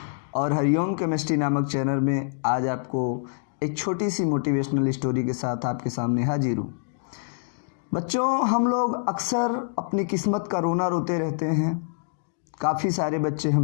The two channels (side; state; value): right; silent; digital silence